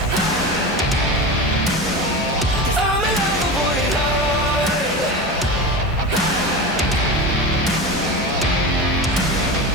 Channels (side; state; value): both; normal; correlation 0.25